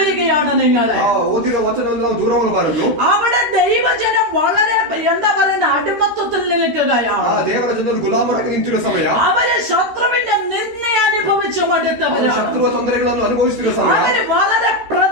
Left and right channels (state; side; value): late; left; 13 ms